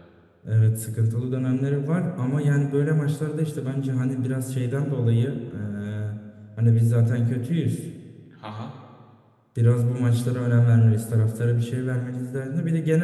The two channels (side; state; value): both; identical; correlation 1.00